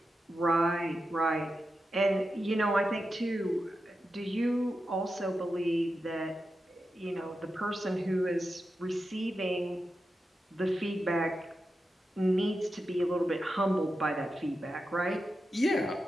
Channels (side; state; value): both; normal; correlation 0.90